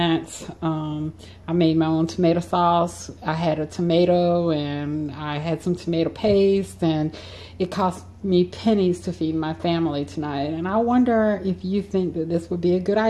I made my own tomato sauce. I had a tomato, and I had some tomato paste, and it cost me pennies to feed my family tonight. And I wonder if you think that this would be a good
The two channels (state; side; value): identical; both; correlation 1.00